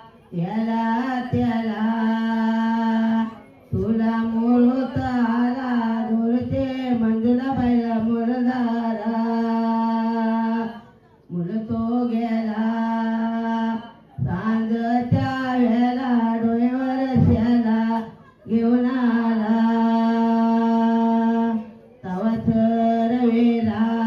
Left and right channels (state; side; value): identical; both; correlation 1.00